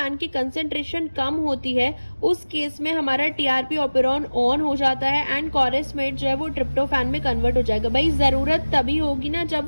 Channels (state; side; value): inverted; both; correlation -1.00